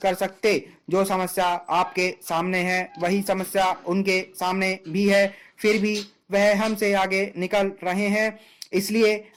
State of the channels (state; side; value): identical; both; correlation 1.00